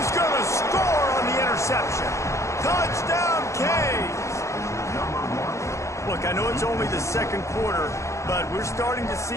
going to score on the interception. Touchdown, Canes. Look, I know it's only the second quarter, but we're starting to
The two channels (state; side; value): late; right; 0.14 ms